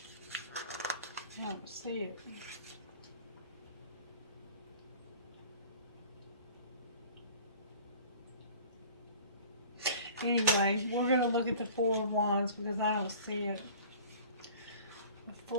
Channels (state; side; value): inverted; both; correlation -0.45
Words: I don't see it. Anyway, we're going to look at the Four of Wands because I don't see it. The